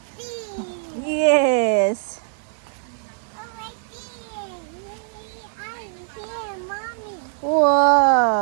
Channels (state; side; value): silent; left; 63 dB below the other